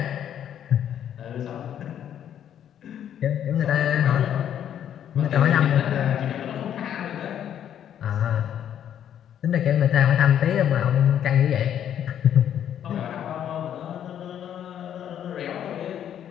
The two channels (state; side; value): quieter; right; 9.9 dB